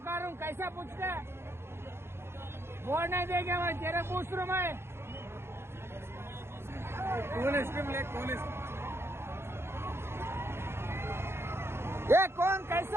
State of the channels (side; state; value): left; late; 0.12 ms